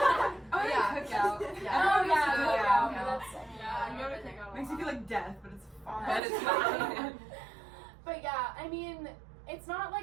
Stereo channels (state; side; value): drops out; left; at 6.2 s